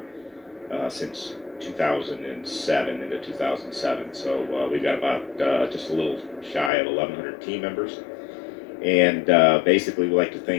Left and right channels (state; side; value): drops out; right; at 6.7 s